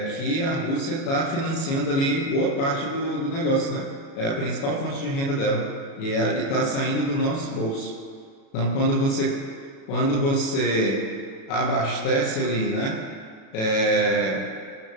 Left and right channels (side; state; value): right; late; 37 ms